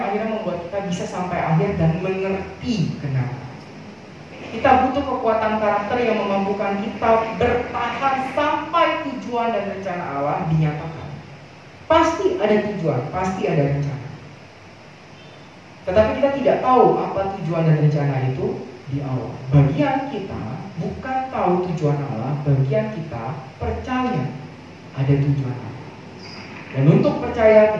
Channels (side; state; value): both; identical; correlation 1.00